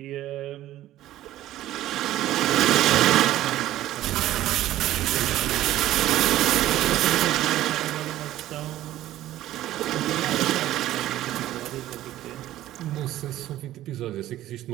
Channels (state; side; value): quieter; left; 14.1 dB